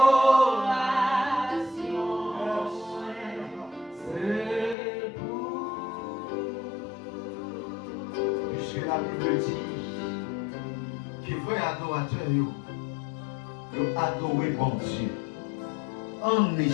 Parce que la Bible dit que vrai adorateur, ils adoré bon Dieu en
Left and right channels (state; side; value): drops out; right; at 4.8 s